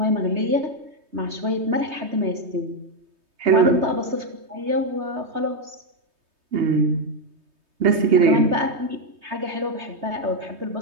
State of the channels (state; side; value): late; left; 3.2 ms